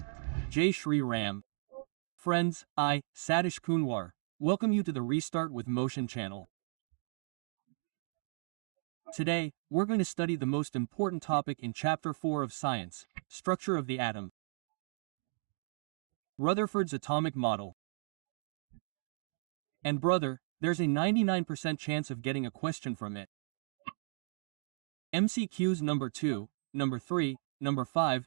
Jai Shri Ram. Friends, I, Satish Sir, welcome you to the Restart with Motion channel. Today, we're going to study the most important topic in Chapter 4 of Science, Structure of the Atom. Rutherford's Atomic Model. And brother, there's a 99% chance of getting a question from it. MCQs number 2, number 3, number 5,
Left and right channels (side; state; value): left; silent; digital silence